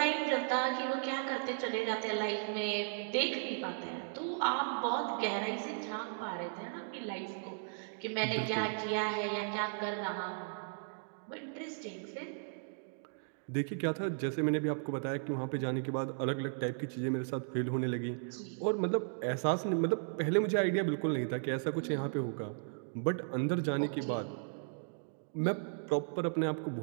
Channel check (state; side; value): silent; left; digital silence